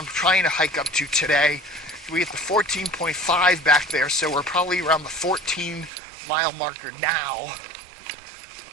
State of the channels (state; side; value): drops out; left; at 5.9 s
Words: trying to hike up to today. We hit the 14.5 back there, so we're probably around the 14 mile marker now.